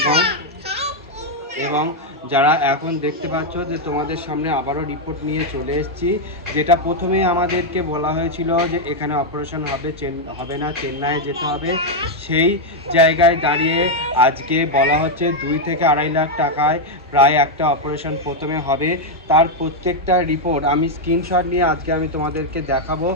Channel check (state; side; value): normal; both; correlation 0.01